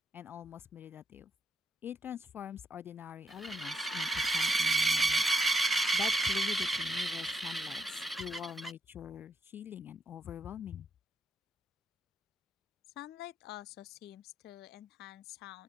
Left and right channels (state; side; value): normal; both; correlation 0.75